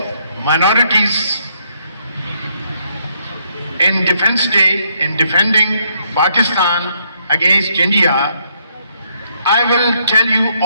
minorities in Defense Day, in defending Pakistan against India. I will tell you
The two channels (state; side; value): inverted; both; correlation -0.72